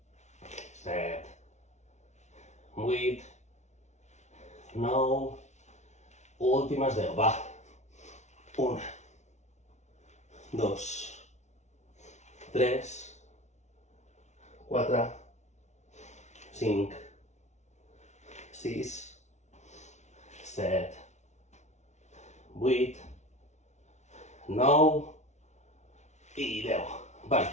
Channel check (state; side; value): late; right; 0.33 ms